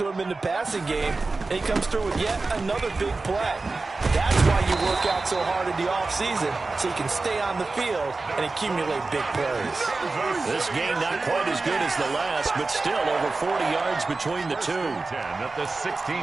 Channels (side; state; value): left; quieter; 3.6 dB